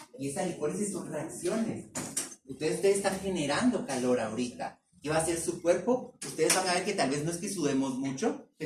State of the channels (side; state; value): both; identical; correlation 1.00